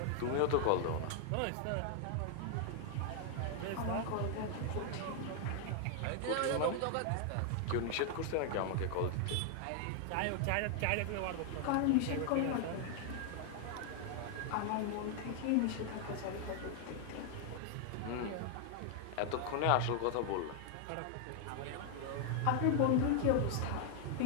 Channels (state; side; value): different; both; correlation 0.00